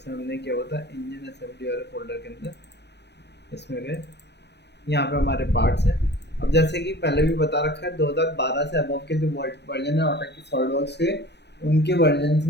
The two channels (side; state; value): right; late; 0.50 ms